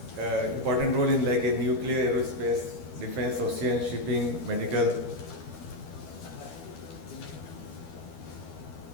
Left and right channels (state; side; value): late; right; 12 ms